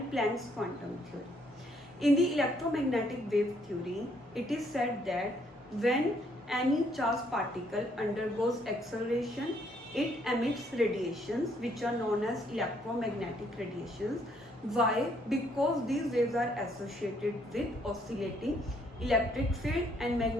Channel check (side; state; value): both; normal; correlation 0.69